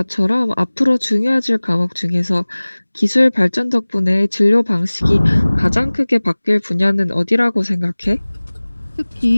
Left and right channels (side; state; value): both; inverted; correlation -1.00